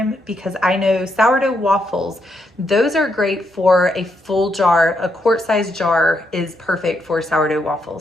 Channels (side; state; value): both; normal; correlation 0.79